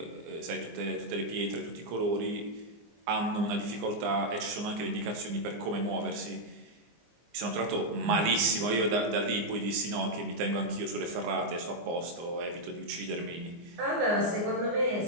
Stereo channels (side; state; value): left; late; 24 ms